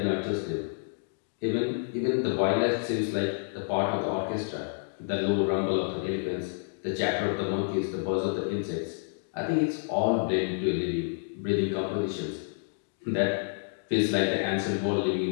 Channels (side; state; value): right; silent; digital silence